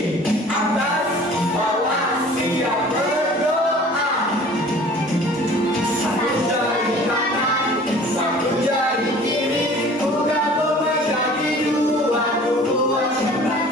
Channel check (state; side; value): normal; both; correlation 0.47